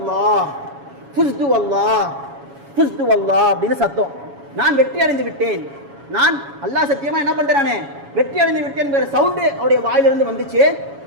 ஃபுஸ்து வல்லாஹ், ஃபுஸ்து வல்லாஹ் அப்படின்னு சத்தம். நான் வெற்றி அடைந்து விட்டேன், நான் அல்லாஹ் சத்தியமா என்ன பண்றானே வெற்றி அடைந்து விட்டேன் என்கிற சவுண்டு அவருடைய வாயிலிருந்து வந்துச்சு.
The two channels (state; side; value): late; left; 7.2 ms